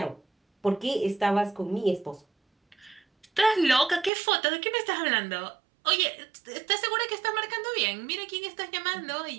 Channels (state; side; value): drops out; left; at 4.1 s